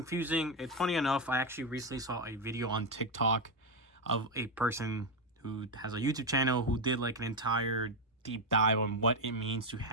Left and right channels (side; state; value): both; normal; correlation 0.07